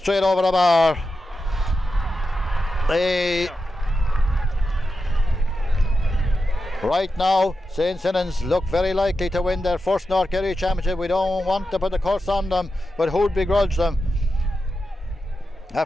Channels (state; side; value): normal; both; correlation 0.89